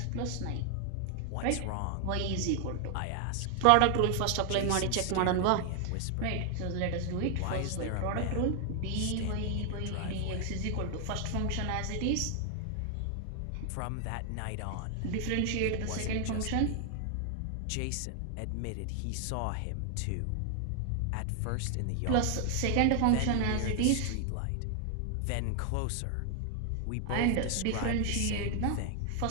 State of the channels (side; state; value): both; different; correlation 0.00